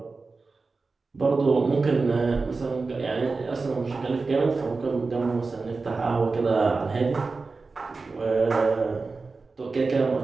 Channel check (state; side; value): quieter; left; 4.0 dB